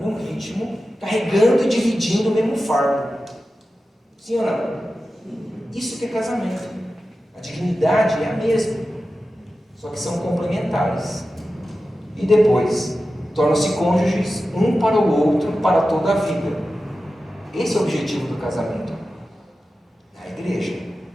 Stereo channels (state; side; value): normal; both; correlation 0.93